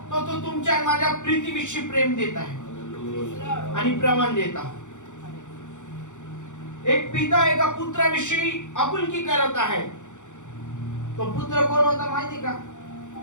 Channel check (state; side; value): late; right; 0.85 ms